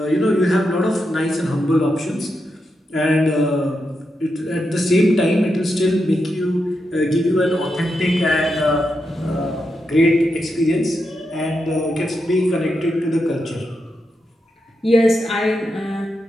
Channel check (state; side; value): normal; both; correlation 0.85